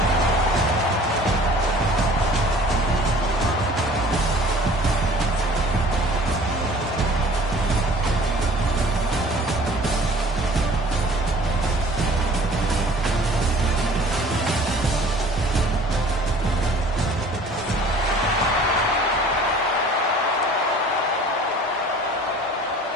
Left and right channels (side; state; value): both; normal; correlation 0.49